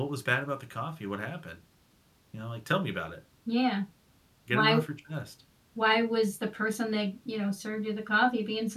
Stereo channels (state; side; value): identical; both; correlation 1.00